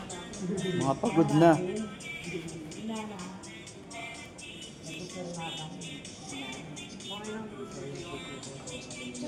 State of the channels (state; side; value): identical; both; correlation 1.00